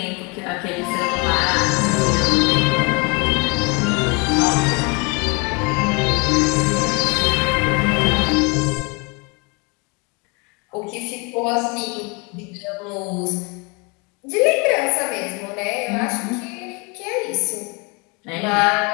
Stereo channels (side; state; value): right; quieter; 30.4 dB